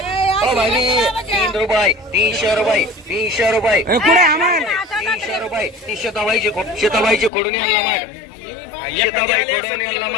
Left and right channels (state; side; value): drops out; right; at 7.3 s